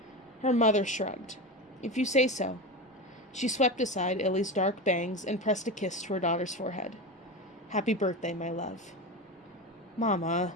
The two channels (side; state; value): both; normal; correlation 0.23